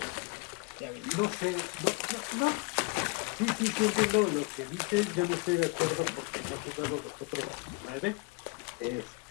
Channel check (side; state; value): right; quieter; 27.6 dB